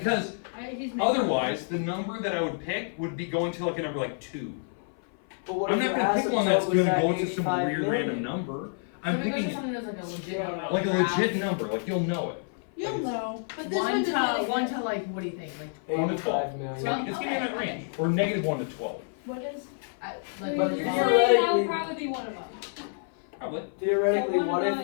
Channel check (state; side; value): silent; right; 57 dB below the other